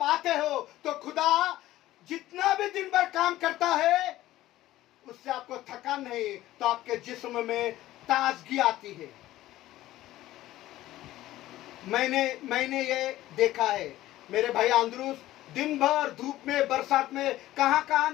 आते हो तो खुदा जितना भी दिन भर काम करता है उससे आपको थकान नहीं, तो आपके जिस्म में ताजगी आती है। मैंने ये देखा है, मेरे भाई आंद्रूस दिन भर धूप में बरसात में कहां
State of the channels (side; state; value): right; quieter; 15.3 dB